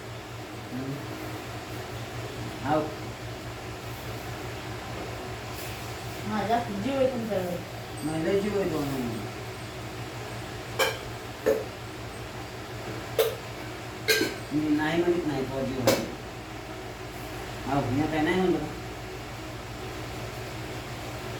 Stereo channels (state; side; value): identical; both; correlation 1.00